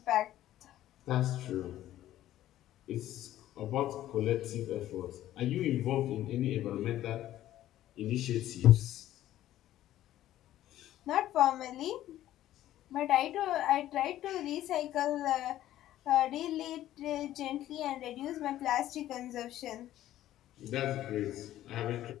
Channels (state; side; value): quieter; right; 13.4 dB